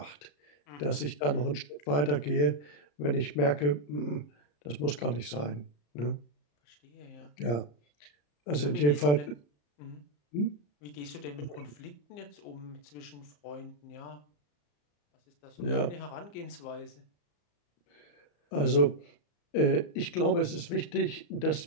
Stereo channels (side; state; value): right; late; 34 ms